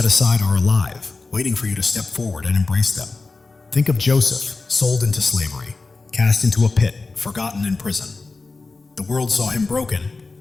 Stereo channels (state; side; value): quieter; right; 3.8 dB